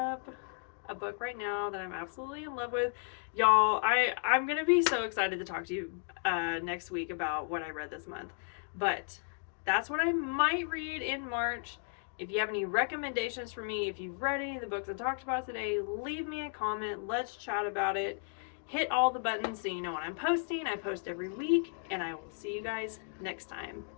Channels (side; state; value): right; silent; 55 dB below the other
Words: a book right now that I'm absolutely in love with. Y'all, I'm going to be so excited to talk to you next week about what I read this month. But that's what I might read in March. If you have any recommendations for me, if you've read any of the books I talked about today, leave me a comment. Let's chat about it. Hit all the buttons so you know when I'm posting. I post every week, and I will see you guys next time.